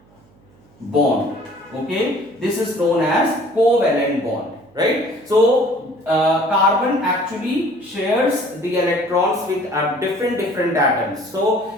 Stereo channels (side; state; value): right; noise; hum, 30 dB below the sound